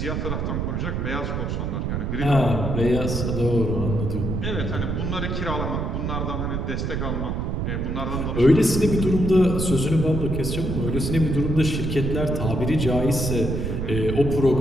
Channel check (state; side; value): noise; right; rumble, 1 dB below the sound